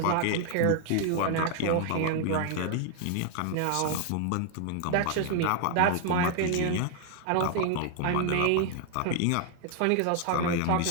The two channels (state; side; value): different; both; correlation 0.00